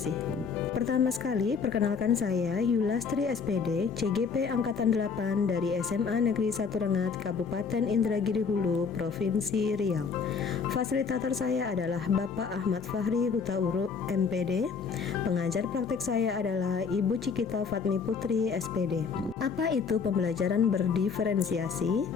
Pertama sekali, perkenalkan saya Yulastri SPD, CGP Angkatan 8 dari SMA Negeri 1 Rengat, Kabupaten Indragiri Hulu, Provinsi Riau. Fasilitator saya adalah Bapak Ahmad Fahri Hutauruk, MPD. Pengajar praktek saya adalah Ibu Cikita Fatmi Putri, SPD. Apa itu pembelajaran berdiferensiasi?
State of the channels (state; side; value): quieter; right; 5.6 dB